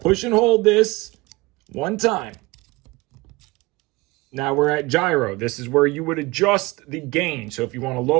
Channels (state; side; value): quieter; left; 22.4 dB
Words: push and hold this 1 time. Now we're at gyro. This is where you would adjust the gain. So if you want to